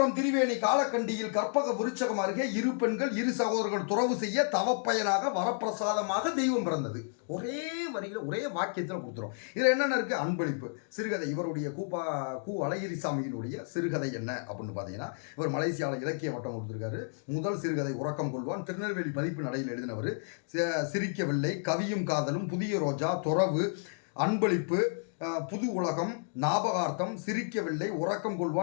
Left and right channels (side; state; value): right; silent; digital silence